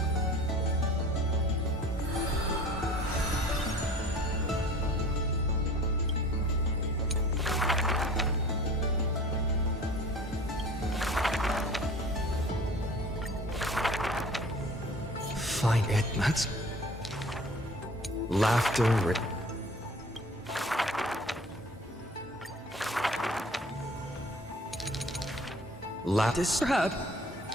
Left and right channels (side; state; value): both; normal; correlation 0.45